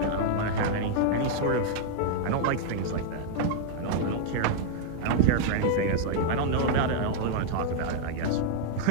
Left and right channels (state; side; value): different; both; correlation -0.01